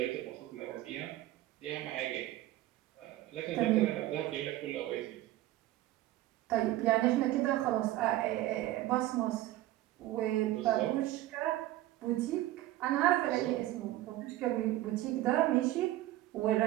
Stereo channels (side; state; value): left; quieter; 15.5 dB